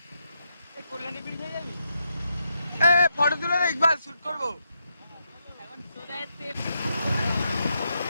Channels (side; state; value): both; inverted; correlation -0.81